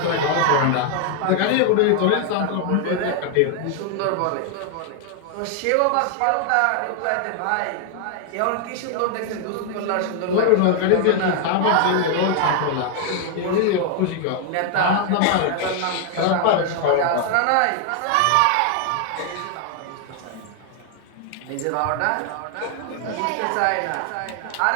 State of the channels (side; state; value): both; different; correlation 0.00